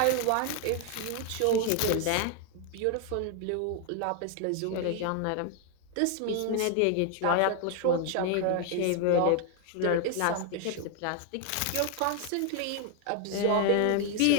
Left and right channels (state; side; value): different; both; correlation 0.01